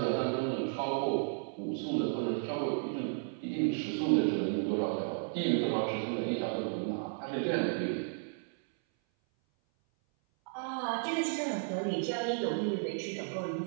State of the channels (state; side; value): silent; left; 55 dB below the other